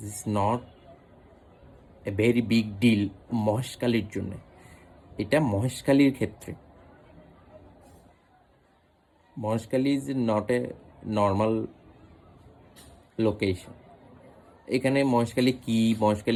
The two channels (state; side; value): identical; both; correlation 1.00